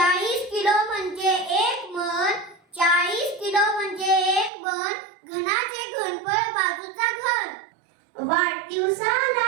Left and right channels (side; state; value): left; drops out; at 4.5 s